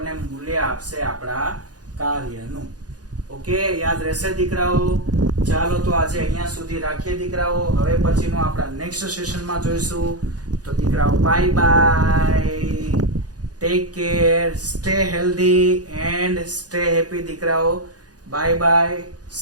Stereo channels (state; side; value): late; left; 0.68 ms